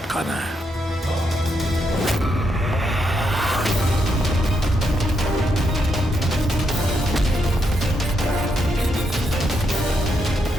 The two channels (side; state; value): both; normal; correlation 0.80